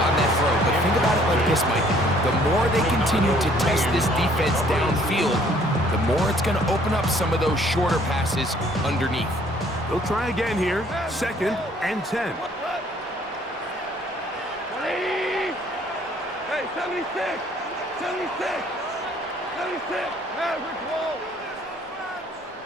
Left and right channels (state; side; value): normal; both; correlation 0.60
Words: on that throw, but think about it like this, Mike. The more they continue to test this defense downfield, the more it's going to open up some of those shorter passes underneath. They'll try again here. 2nd and 10. Hey, 76! 76! Maverick wall!